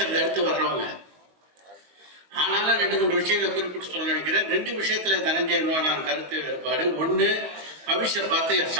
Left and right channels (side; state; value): left; late; 20 ms